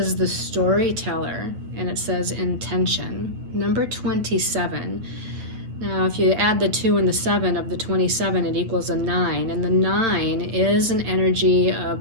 the storyteller, and it says intention. Number 27. Now, if you add the 2 and the 7 of the 27, it equals a 9. And the 9 is an energy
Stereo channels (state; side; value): late; left; 8.9 ms